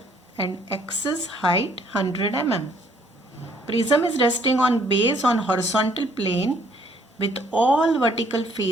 and axis height 100 mm. Prism is resting on base on horizontal plane with all vertical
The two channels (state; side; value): normal; both; correlation 0.64